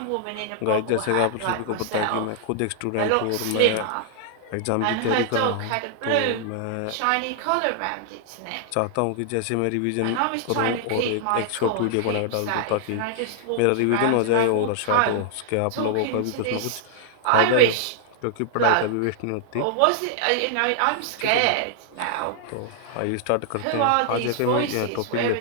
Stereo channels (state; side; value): different; both; correlation -0.01